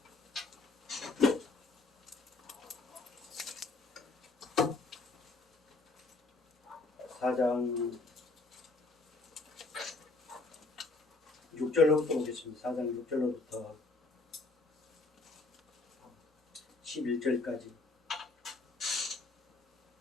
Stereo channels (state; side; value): quieter; right; 3.4 dB